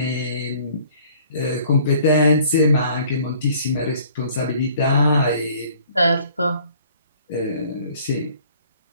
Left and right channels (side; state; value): both; inverted; correlation -0.55